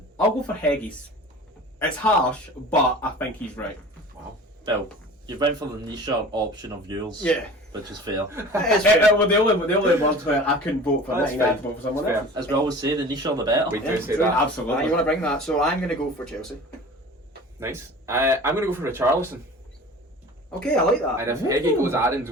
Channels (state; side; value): normal; both; correlation 0.40